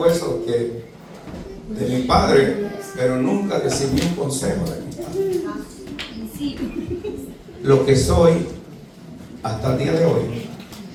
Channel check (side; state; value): both; identical; correlation 1.00